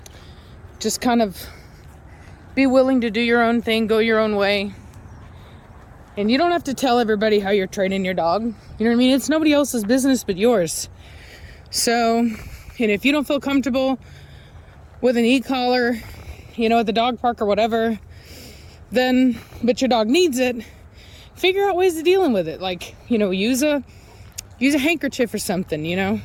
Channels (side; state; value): both; identical; correlation 1.00